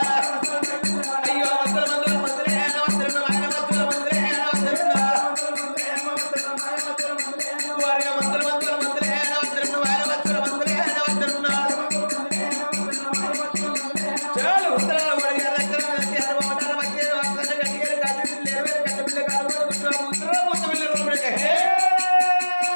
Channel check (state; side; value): inverted; both; correlation -1.00